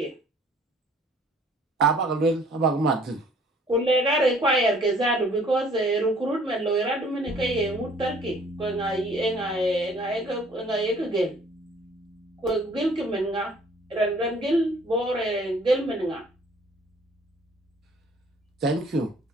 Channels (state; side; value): normal; both; correlation 0.56